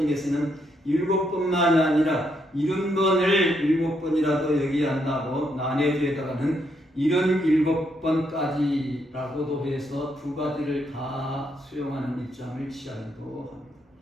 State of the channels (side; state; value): both; normal; correlation 0.76